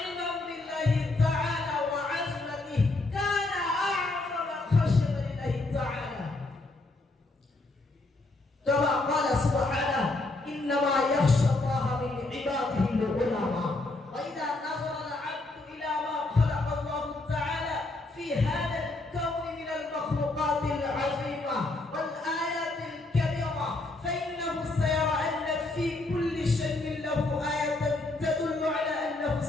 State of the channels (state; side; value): quieter; right; 3.0 dB